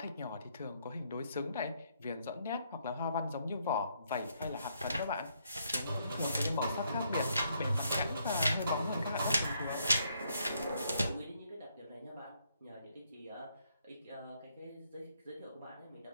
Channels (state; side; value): inverted; both; correlation -0.73